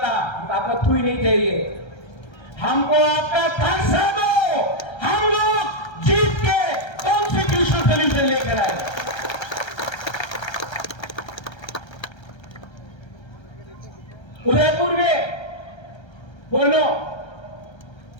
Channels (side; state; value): right; late; 1.3 ms